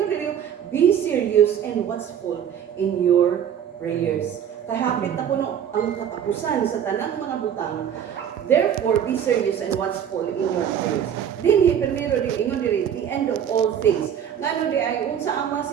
dili, be serious and watchful in your prayers. Kahapit na kuno ang katapusan sa tanang mga butang. Therefore, be serious and watchful in your prayers. Dinhi primero di ingon diri, the end of all things. Ngano di ay unsa ang mga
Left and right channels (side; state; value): left; quieter; 8.9 dB